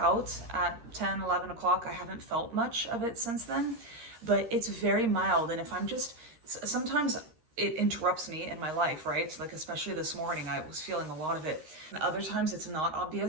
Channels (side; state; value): left; late; 13 ms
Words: at 10, 11 o'clock, I haven't felt much of it since then, but it's very mild. And if I'm just, sometimes it interrupts me in my life, right? Like, especially this morning, I was feeling a lot of it. And other times it's not